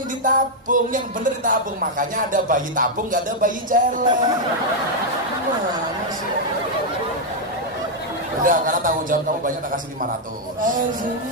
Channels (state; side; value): normal; both; correlation -0.01